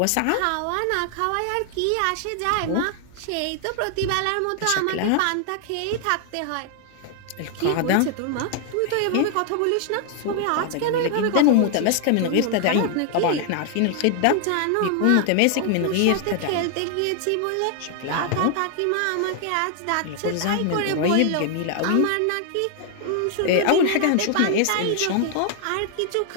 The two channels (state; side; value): different; both; correlation 0.00